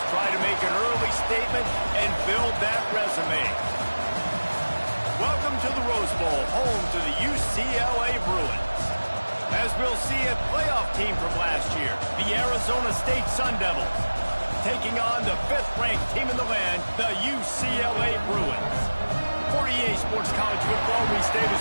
try to make an early statement and build that resume. Welcome to the Rose Bowl, home to the UCLA Bruins. As we'll see a playoff team from last year, the Arizona State Sun Devils, taking on the 5th-ranked team in the land, the UCLA Bruins. For EA Sports College Football, Reese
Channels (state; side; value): inverted; both; correlation -1.00